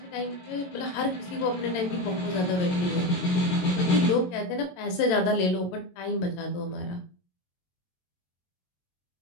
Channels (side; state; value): right; late; 22 ms